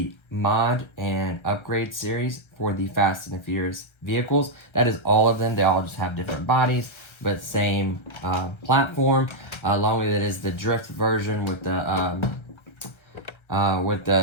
mod and upgrade series for the Fast and the Furious vehicles. That is all of them. They all just have different bodies, but same platform. Along with it is the drift version with the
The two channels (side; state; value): right; late; 1.3 ms